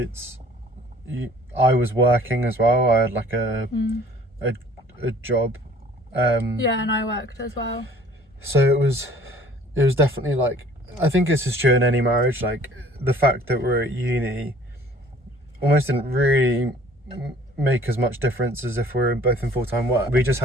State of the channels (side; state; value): both; normal; correlation 0.53